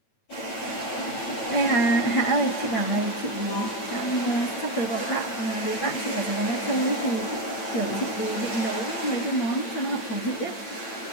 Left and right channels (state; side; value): late; right; 9.0 ms